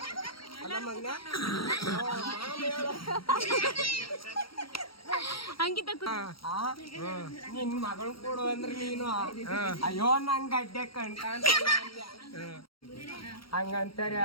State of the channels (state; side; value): late; right; 0.74 ms